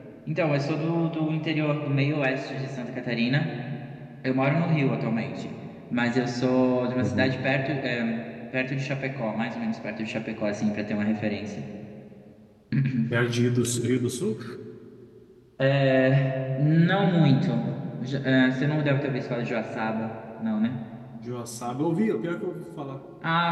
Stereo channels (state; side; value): identical; both; correlation 1.00